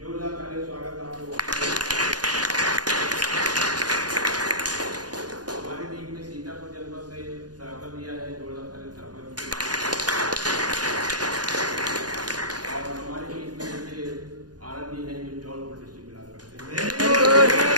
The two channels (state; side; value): late; left; 0.69 ms